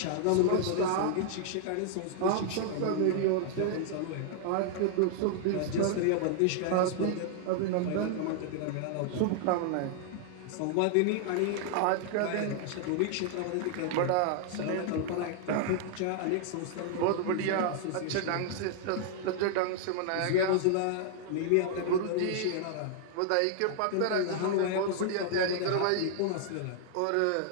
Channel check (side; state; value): both; different; correlation -0.01